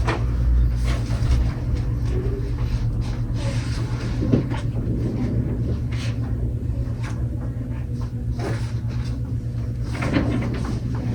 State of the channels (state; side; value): identical; both; correlation 1.00